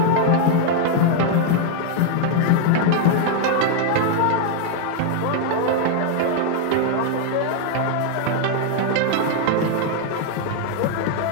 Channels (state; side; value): different; both; correlation 0.00